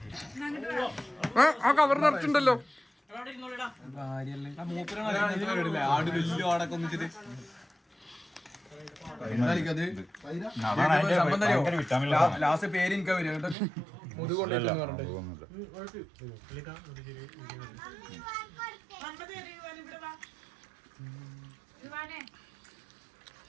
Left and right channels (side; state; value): left; drops out; at 13.6 s